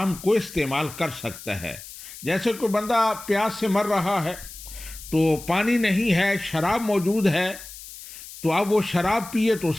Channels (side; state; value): left; noise; hiss, 15 dB below the sound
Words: को इस्तेमाल कर सकता है। जैसे कोई बंदा प्यास से मर रहा है, तो पानी नहीं है, शराब मौजूद है, तो अब वो शराब पिए तो